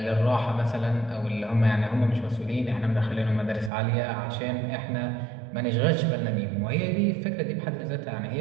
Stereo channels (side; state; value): left; drops out; at 3.7 s